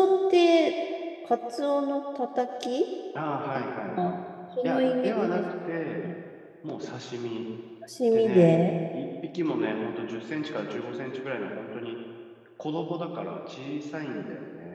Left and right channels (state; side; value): identical; both; correlation 1.00